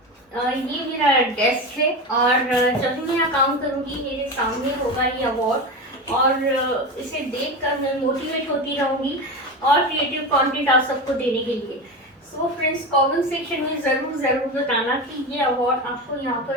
ये मेरा डेस्क है और जब भी मैं यहाँ काम करूँगी मेरे सामने होगा ये अवार्ड, और इसे देखकर मैं मोटिवेट होती रहूँगी और क्रिएटिव कंटेंट आप सबको देने के लिए। सो फ्रेंड्स, कमेंट सेक्शन में ज़रूर बताना कि ये अवार्ड आपको यहाँ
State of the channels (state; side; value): normal; both; correlation 0.22